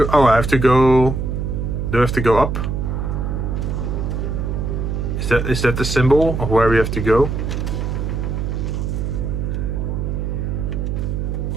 Oh, I have to go... Do I have to go up? Is that the symbol of where we have to go?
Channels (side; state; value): right; noise; hum, 2 dB below the sound